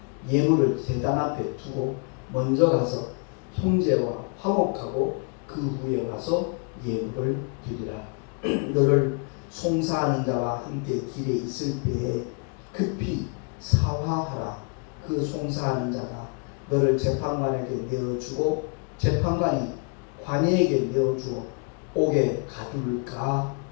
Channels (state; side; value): quieter; right; 37.4 dB